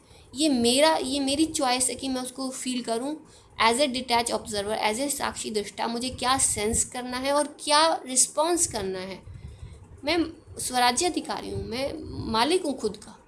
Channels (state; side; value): identical; both; correlation 1.00